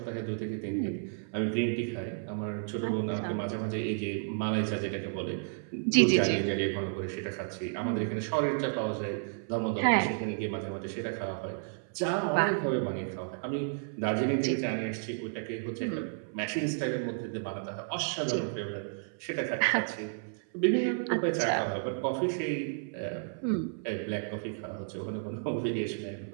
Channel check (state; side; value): silent; left; 55 dB below the other